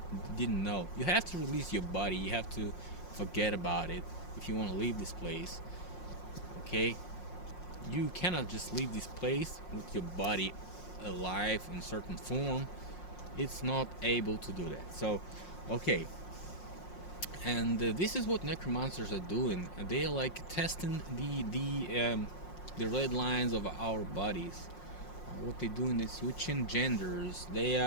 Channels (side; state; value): right; late; 5.6 ms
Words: didn't know. You have to release your body. You have to forget about it if you want to leave this place. Okay? You cannot just leave this place with your body alive in certain form. It's not able to do that. So, okay. And this is what necromancers are doing. They are testing the red lines of our bodies. What they're doing is switching genders. They